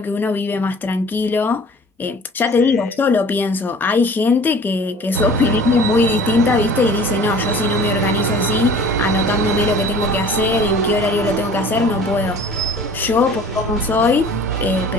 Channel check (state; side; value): normal; both; correlation 0.46